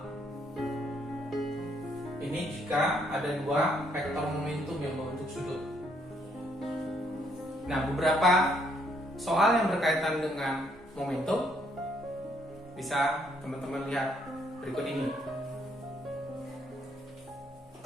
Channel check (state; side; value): normal; both; correlation 0.70